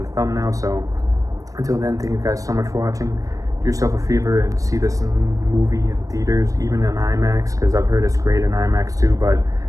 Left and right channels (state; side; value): late; left; 0.16 ms